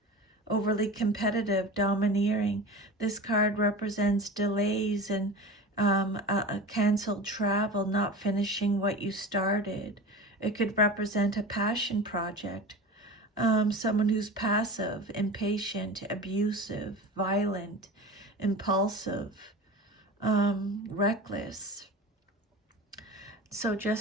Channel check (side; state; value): both; normal; correlation 0.32